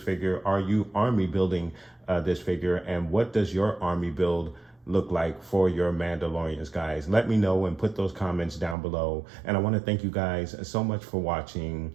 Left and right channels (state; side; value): drops out; left; at 8.8 s